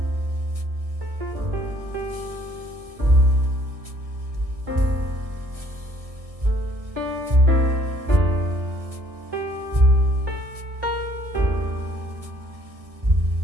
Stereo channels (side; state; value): left; late; 1.6 ms